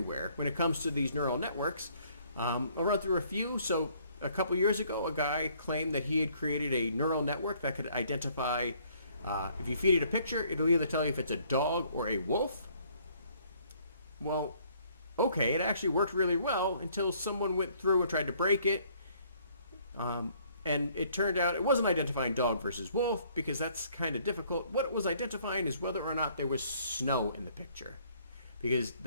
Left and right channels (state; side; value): inverted; both; correlation -0.63